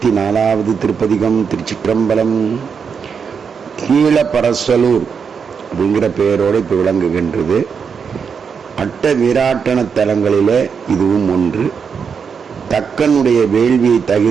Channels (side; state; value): left; quieter; 6.3 dB